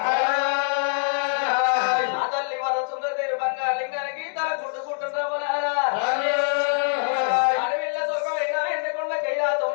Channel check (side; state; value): right; silent; 62 dB below the other